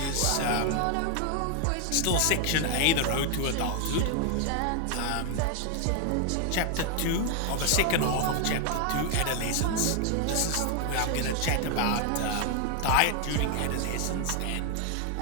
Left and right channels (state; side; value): different; both; correlation 0.01